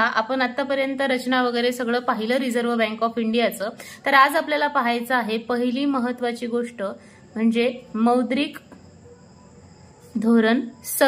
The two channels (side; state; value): both; identical; correlation 1.00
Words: आपण आतापर्यंत रचना वगैरे सगळं पाहिलं रिझर्व्ह बँक ऑफ इंडियाचं। तर आज आपल्याला पाहायचं आहे पहिली महत्त्वाची गोष्ट म्हणजे मौद्रिक धोरण